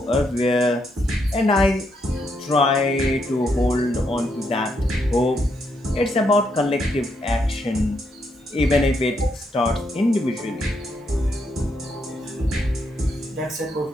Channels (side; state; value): both; normal; correlation 0.78